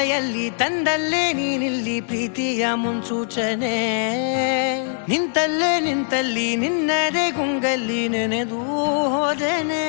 ಕಣ್ಣಲ್ಲಿ ತಂದಲ್ಲೇ ನೀನಿಲ್ಲಿ ಪ್ರೀತಿಯ ಮುನ್ಸೂಚನೆ ನಿಂತಲ್ಲಿ ನಿನ್ನದೇ ಗುಂಗಲ್ಲಿ ನೆನೆದು ಹೋದನೆ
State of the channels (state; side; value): silent; right; digital silence